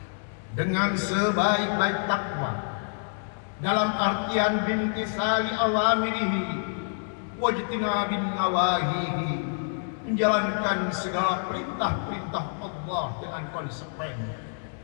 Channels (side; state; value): right; silent; digital silence